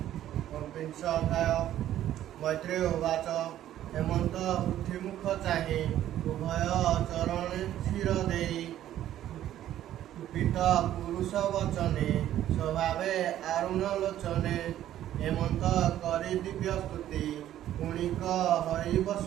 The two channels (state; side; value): quieter; left; 12.3 dB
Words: विंश अध्याय। मैत्रेय उवाच हेमंत पृथ्वीमुख चाहे उभय चरण क्षीर देई कुपित पुरुष वचने स्वभावे आरुण लोचने हेमंत करी दिव्य स्तुति गुणिक हरि